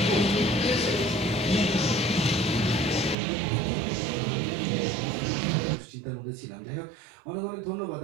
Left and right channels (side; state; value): left; drops out; at 3.2 s